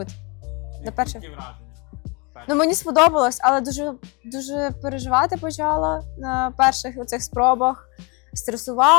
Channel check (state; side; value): quieter; right; 29.9 dB